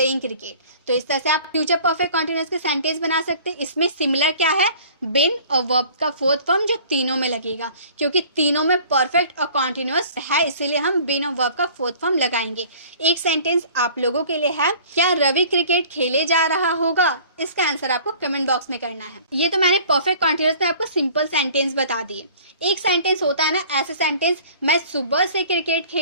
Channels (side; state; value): both; inverted; correlation -0.48